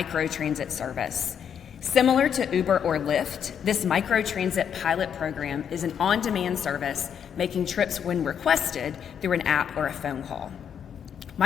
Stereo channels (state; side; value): quieter; right; 8.1 dB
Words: service. Similar to Uber or Lyft, this microtransit pilot program is an on-demand service making trips when requested through an app or a phone call.